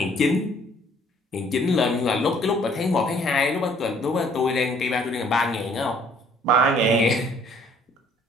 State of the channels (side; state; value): both; normal; correlation 0.60